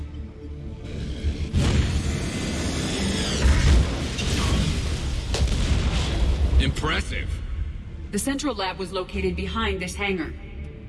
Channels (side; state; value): both; identical; correlation 1.00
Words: Impressive. The central lab was located behind this hangar.